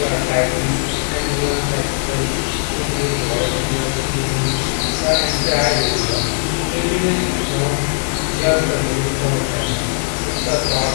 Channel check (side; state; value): right; silent; 67 dB below the other